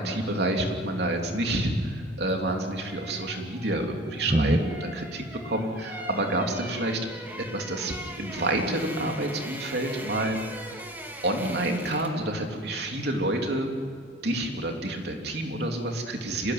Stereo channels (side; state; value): both; normal; correlation 0.40